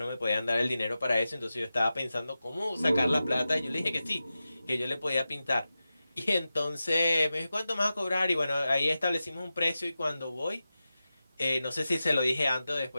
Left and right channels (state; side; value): inverted; both; correlation -0.93